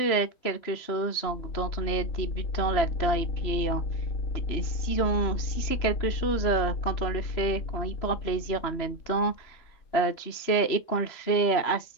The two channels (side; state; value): right; late; 3.0 ms